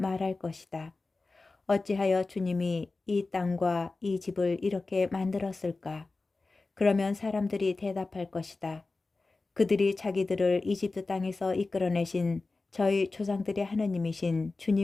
것이다. 어찌하여 주님이 이 땅과 이 집을 이렇게 만들었을까? 그러면 사람들이 대답할 것이다. 그들이 자기들을 이집트 땅에서 이끌어내신 저희 조상들의 하느님이신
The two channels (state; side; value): quieter; right; 3.6 dB